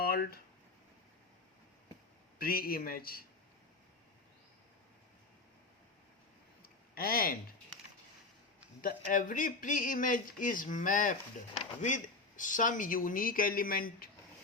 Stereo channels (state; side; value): quieter; right; 3.7 dB